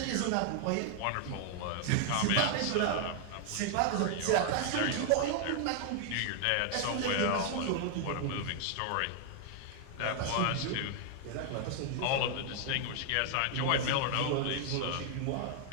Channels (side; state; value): both; different; correlation 0.00